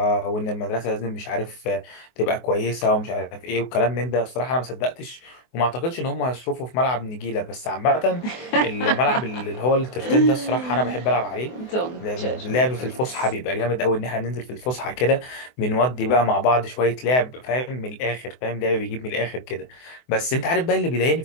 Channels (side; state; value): right; late; 24 ms